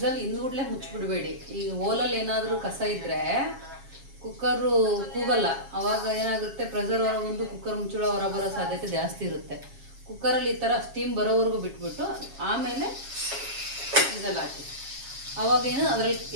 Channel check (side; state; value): left; late; 7.3 ms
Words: ಹಿಂದ್ಗೂಡ್ಲೆ ಮುಚ್ಚಿಬಿಡಬೇಡಿ. ಈಗ ಓಲಲ್ಲಿ ಏನಾದರೂ ಕಸ ಇದ್ದರೆ ಕುಕ್ಕರು ಕೂಗಲ್ಲ. ಆವಾಗ ಏನಾಗುತ್ತೆ, ಪ್ರೆಷರ್ ಹೊರ ಬಂದು ಕುಕ್ಕರ್ ಮುಚ್ಚಳ ಹೊರ ಬರೋ ಸಾಧ್ಯತೆ ಜಾಸ್ತಿ ಇರುತ್ತೆ. ಕುಕ್ಕರಲ್ಲಿ ಈ ಥರ ಸ್ಟೀಮ್ ಬರೋವರೆಗೂ ಬಿಟ್ಬಿಟ್ಟು ಆಮೇಲೆ ವಿಸಲ್ ಹಾಕಿ. ಆವಾಗ ಅದರಲ್ಲಿ